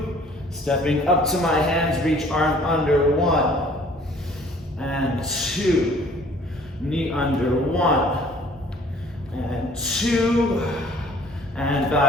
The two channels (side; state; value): both; normal; correlation 0.54